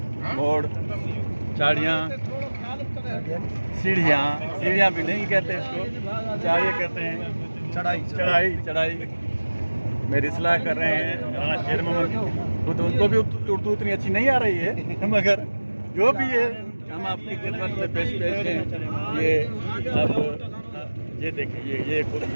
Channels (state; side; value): inverted; both; correlation -1.00